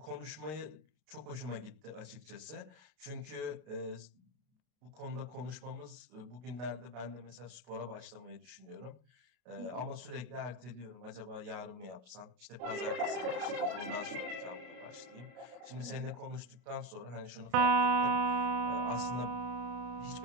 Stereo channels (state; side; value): late; left; 32 ms